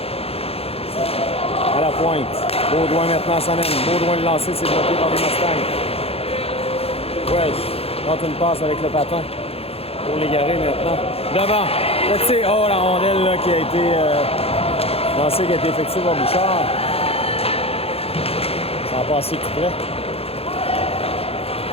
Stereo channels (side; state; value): right; late; 0.29 ms